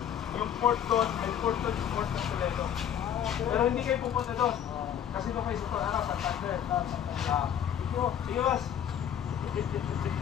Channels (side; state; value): right; quieter; 9.3 dB